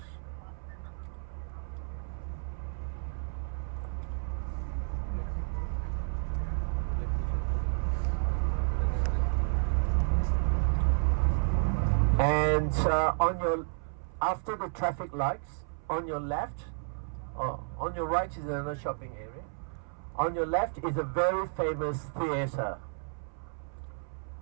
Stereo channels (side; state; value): left; silent; 57 dB below the other